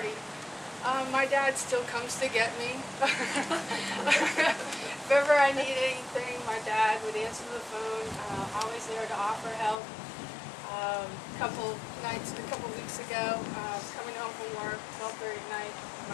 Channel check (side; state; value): right; drops out; at 9.8 s